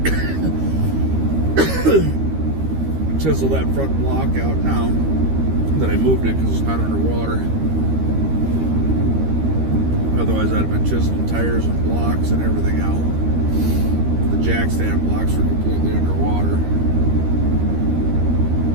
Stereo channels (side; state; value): left; late; 13 ms